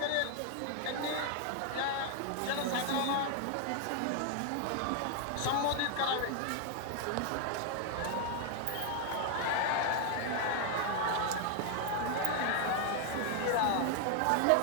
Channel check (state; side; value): different; both; correlation 0.00